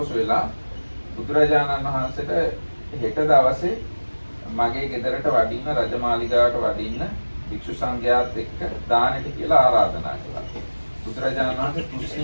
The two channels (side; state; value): both; inverted; correlation -1.00